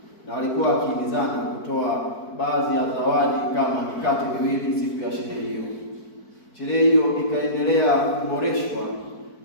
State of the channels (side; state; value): right; late; 4.5 ms